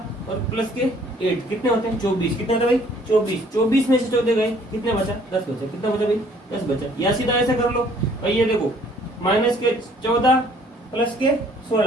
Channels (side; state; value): both; normal; correlation 0.59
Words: और प्लस के 8, कितने होते हैं 24, कितने होते हैं भाई 24, 24 में से 14 गए, कितने बचा 10 बचा, कितना बचा भाई 10 बचा। या सीधा ऐसा कर लो भाई, ये देखो माइनस के 14 प्लस के